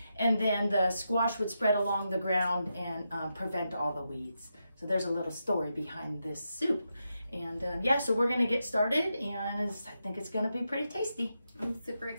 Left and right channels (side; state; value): both; inverted; correlation -0.86